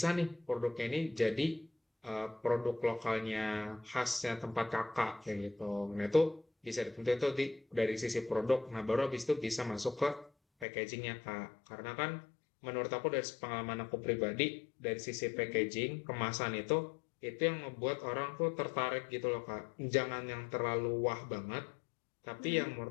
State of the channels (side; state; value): right; drops out; at 10.7 s